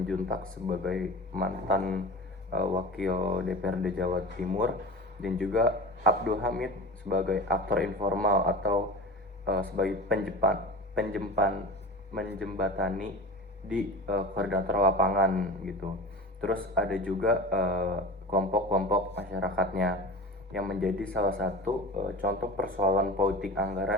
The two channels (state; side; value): normal; both; correlation 0.33